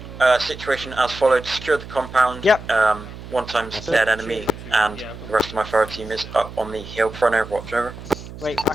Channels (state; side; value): noise; right; hum, 14 dB below the sound